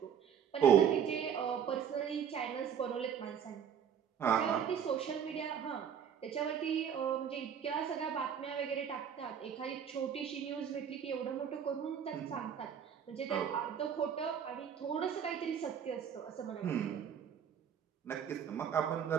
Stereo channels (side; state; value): left; quieter; 8.1 dB